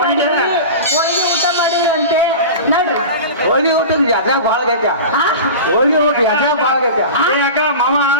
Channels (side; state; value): both; inverted; correlation -0.31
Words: ಹೋಳಿಗೆ ಊಟ ಮಾಡಿರಂತೆ ನಡ್ರಿ ಹೋಳಿ ಊಟದ ಯಾತ್ರೆ ಭಾಳ ಗೈತ. ಹೋಳಿ ಊಟ ಯಾತ್ರೆ ಭಾಳ ಗೈತ. ಏ ಅಕ್ಕ ಮಾಮ